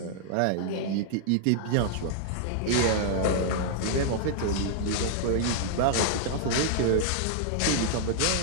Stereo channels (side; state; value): both; different; correlation -0.01